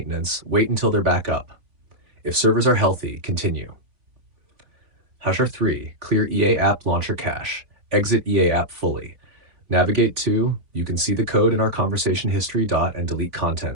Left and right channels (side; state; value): left; late; 3.6 ms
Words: wait until they're back up. If servers are healthy, continue. Hasher 3, clear EA app launcher cache. Exit EA app fully. Navigate to, you can see the code in our conversation history. And delete